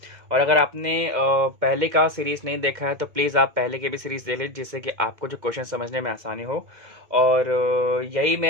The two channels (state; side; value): late; left; 2.2 ms